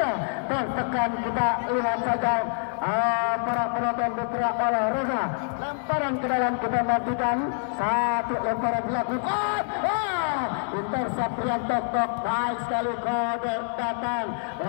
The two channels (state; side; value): silent; right; 61 dB below the other